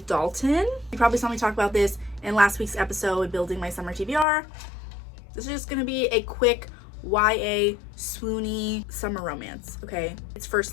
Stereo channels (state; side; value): drops out; right; at 4.2 s